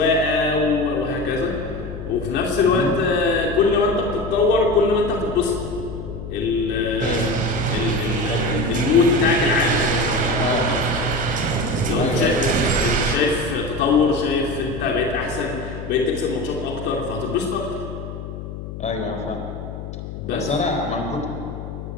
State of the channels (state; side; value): noise; left; hum, 9 dB below the sound